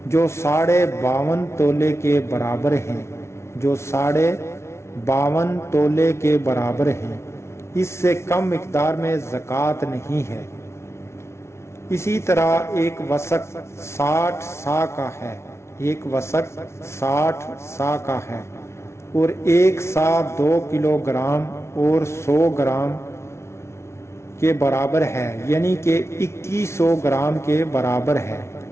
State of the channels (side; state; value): right; late; 0.13 ms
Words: جو 52.5 تولے کے برابر ہیں، جو 52.5 تولے کے برابر ہیں، اس سے کم مقدار میں زکوٰۃ نہیں ہے۔ اسی طرح 1 وسق 60 سا کا ہے، 1 وسق 60 سا کا ہے اور 1 سا 2 کلو گرام اور 100 گرام کے برابر ہے، یعنی کہ 2100 گرام کے برابر ہے۔